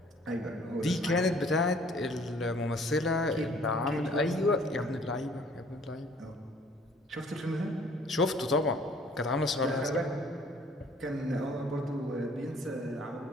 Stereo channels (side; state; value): both; normal; correlation 0.56